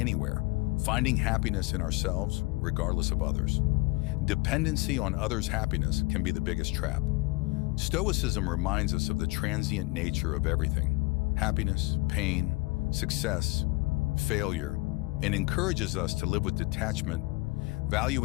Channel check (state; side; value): quieter; right; 23.8 dB